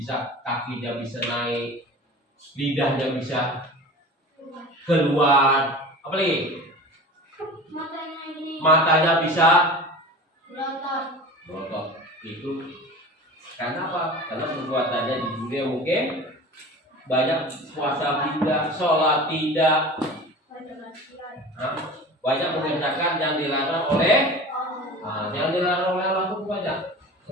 kakinya bisa naik, lidahnya bisa keluar, apa lagi? Matanya bisa berotot. Itu karena apa? Karena perbuatannya di dunia mungkin banyak, puasa tidak, sholat tidak, banyak mengerjakan yang dilarang oleh yang dilarang oleh Allah itu banyak.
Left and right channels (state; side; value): normal; both; correlation 0.37